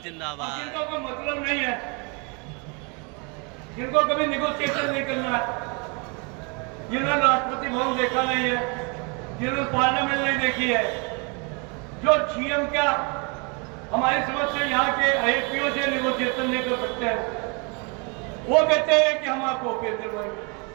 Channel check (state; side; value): quieter; left; 32.7 dB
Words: जिंदाबाद। जिनका कोई मतलब नहीं है, जिनको कभी निगोशिएशन नहीं करना है, जिन्होंने राष्ट्रपति भवन देखा नहीं है, जिन्होंने पार्लियामेंट नहीं देखी है, जो सीएम का हमारी समझ से यहाँ के आईपीओ से निगोशिएशन नहीं कर सकते हैं, वो कहते हैं कि हम आपको ओके दिलवाएंगे।